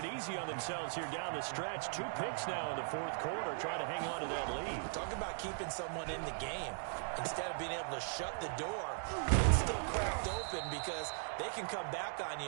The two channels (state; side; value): silent; left; digital silence